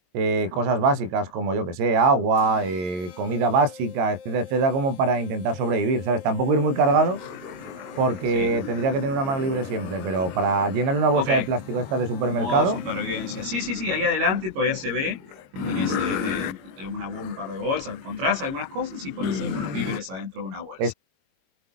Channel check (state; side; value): late; left; 21 ms